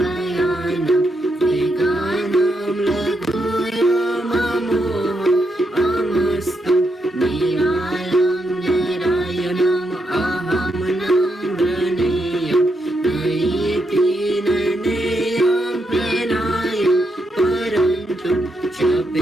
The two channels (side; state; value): both; normal; correlation 0.81